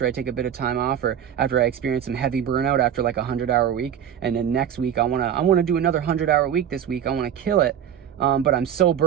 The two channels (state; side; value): quieter; left; 9.3 dB